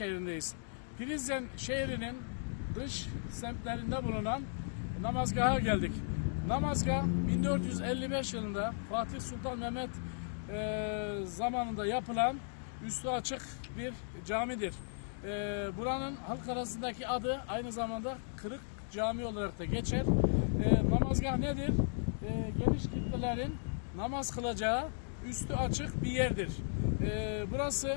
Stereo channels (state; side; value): silent; right; digital silence